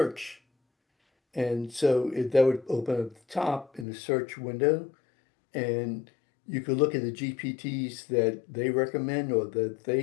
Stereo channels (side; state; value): right; drops out; at 3.9 s